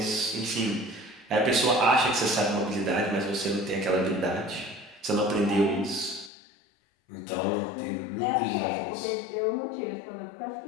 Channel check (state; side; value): drops out; right; at 6.3 s